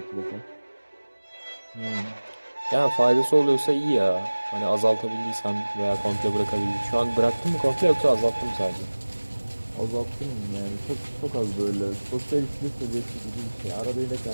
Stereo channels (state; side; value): inverted; both; correlation -1.00